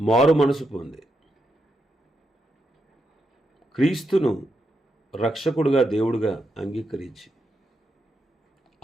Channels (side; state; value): both; normal; correlation 0.83